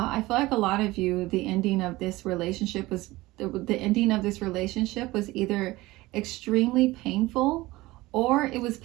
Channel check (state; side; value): quieter; left; 19.5 dB